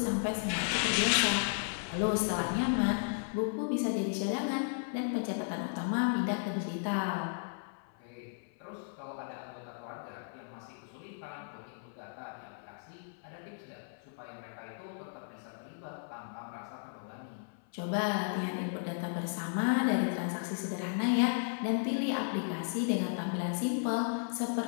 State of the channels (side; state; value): right; silent; 55 dB below the other